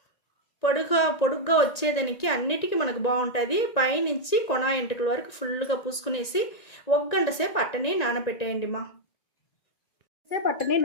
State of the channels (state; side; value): late; right; 1.9 ms